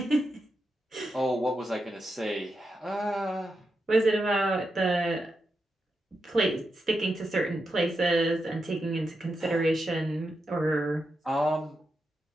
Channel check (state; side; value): normal; both; correlation 0.87